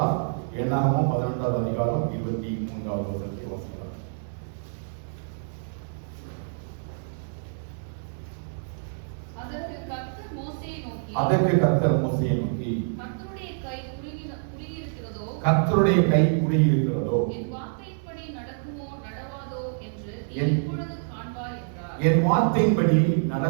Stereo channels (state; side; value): silent; left; 60 dB below the other